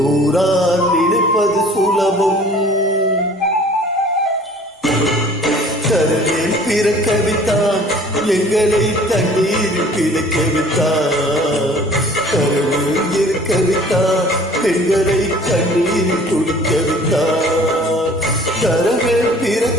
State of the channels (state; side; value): normal; both; correlation 0.50